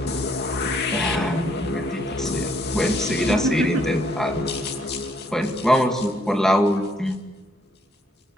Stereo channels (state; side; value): normal; both; correlation 0.70